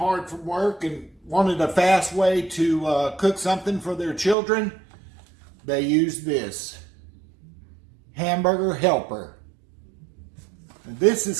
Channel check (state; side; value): drops out; left; at 4.4 s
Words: work and wanted a fast way to cook something for their children. They use this hamburger helper. This